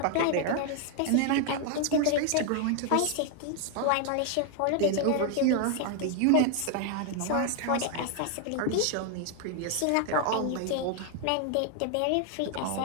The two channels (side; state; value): both; different; correlation 0.01